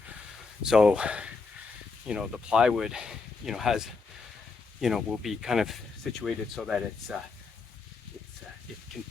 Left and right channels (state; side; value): quieter; right; 4.4 dB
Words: So, the plywood, has, will be kind of situated so that it can